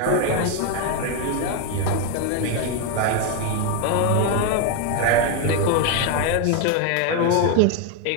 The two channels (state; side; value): different; both; correlation 0.01